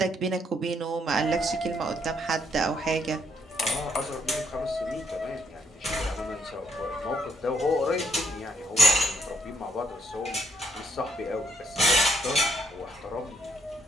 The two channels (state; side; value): normal; both; correlation 0.71